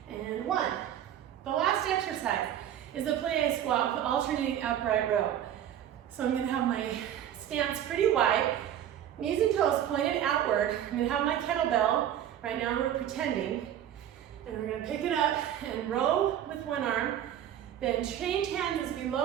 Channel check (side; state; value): left; quieter; 10.7 dB